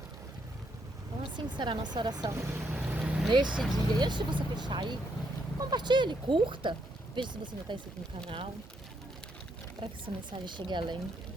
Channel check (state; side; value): normal; both; correlation 0.75